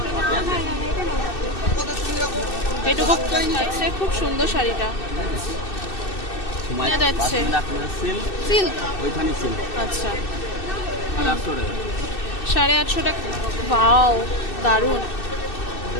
এইটুকু আছে। খুব সুন্দর শাড়িটা যাচ্ছে সিল্ক, আচ্ছা 850 টাকা। বাও দারুন।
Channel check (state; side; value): late; right; 2.6 ms